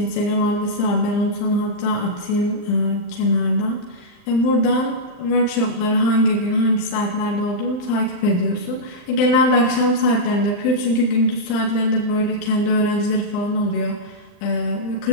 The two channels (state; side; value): late; right; 39 ms